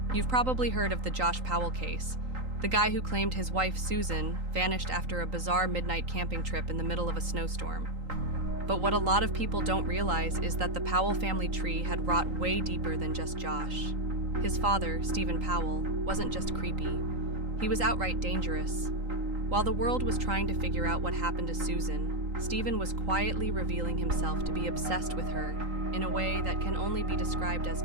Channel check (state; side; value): late; left; 3.8 ms